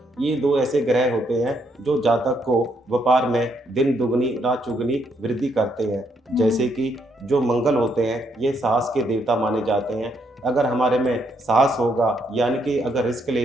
ये दो ऐसे ग्रह होते हैं जो जातक को व्यापार में दिन दुगनी रात चुगनी वृद्धि करते हैं। जैसे कि जो मंगल होते हैं ये साहस के देवता माने जाते हैं। अगर हमारे में साहस होगा, यानी कि अगर रिस्क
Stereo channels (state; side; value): normal; both; correlation 0.74